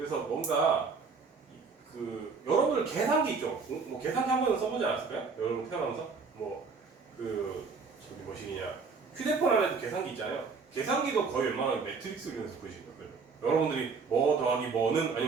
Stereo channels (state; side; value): quieter; left; 4.9 dB